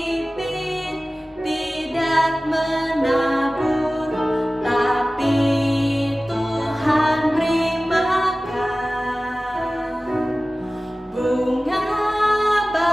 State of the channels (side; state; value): both; normal; correlation 0.97